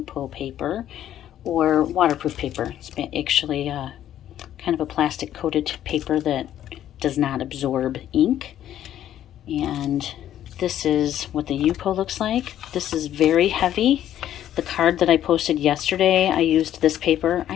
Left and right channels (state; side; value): quieter; right; 11.4 dB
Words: paper or waterproof paper. It's actually kind of a plastic coated paper that does not absorb ink. And this is what the Yupo looks like. This is very heavy. The card that I posted yesterday, I used this paper.